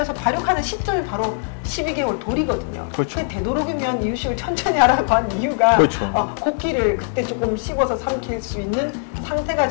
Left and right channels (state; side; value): silent; right; digital silence